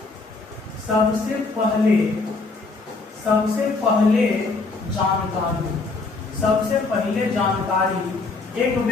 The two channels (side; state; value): right; quieter; 3.8 dB